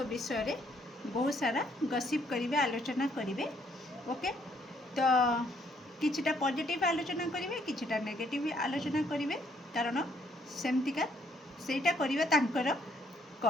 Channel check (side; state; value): both; normal; correlation 0.68